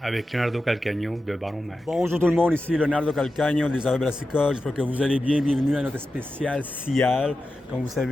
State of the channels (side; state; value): both; normal; correlation 0.91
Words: avec Leonardo Calcagno de Baron Mag. Bonjour tout le monde, ici Leonardo Calcagno des Affaires Brassicole. J'espère que vous allez bien. Bienvenue à notre spécial CIAL. Comme vous